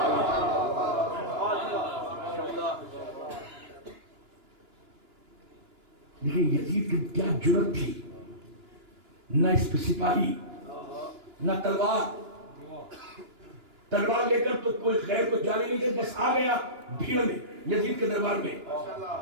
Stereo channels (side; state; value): left; late; 2.9 ms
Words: देखिए यजीद की क्या जुर्रत थी, न इस पे सिपाही न तलवार। तलवार लेकर तो कोई गैर को जाने नहीं दे, बस आ गया भीड़ में यजीद के दरबार में।